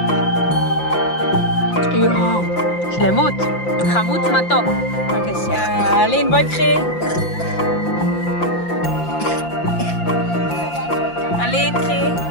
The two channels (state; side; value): late; right; 5.8 ms